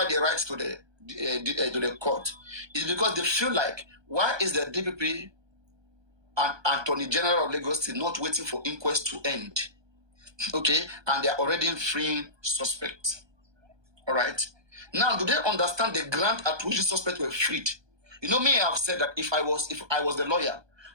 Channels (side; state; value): left; late; 1.2 ms